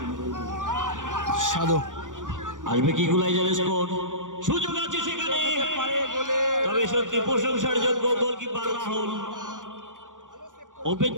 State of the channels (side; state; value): left; late; 0.87 ms